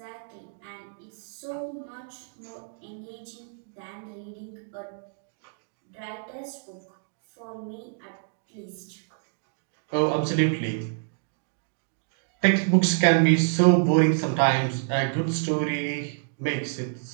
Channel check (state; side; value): silent; left; digital silence